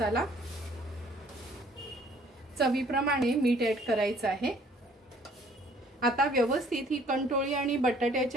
चवीप्रमाणे मीठ ऍड करायचं आहे. आता व्यवस्थित ही कंटोळी आणि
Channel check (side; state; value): both; normal; correlation 0.58